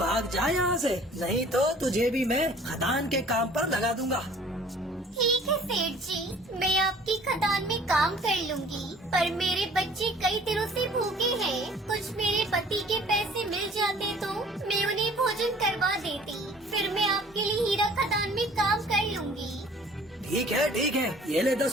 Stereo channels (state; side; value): normal; both; correlation 0.51